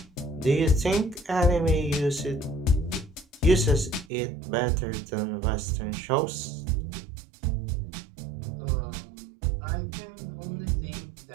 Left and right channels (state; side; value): drops out; left; at 4.0 s